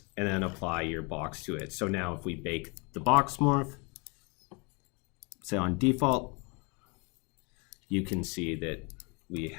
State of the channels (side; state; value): right; quieter; 31.2 dB